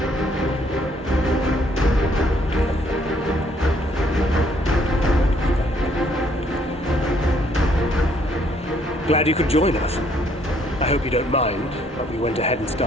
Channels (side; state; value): both; normal; correlation 0.66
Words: Glad you could join us. I hope you don't mind, but we went ahead and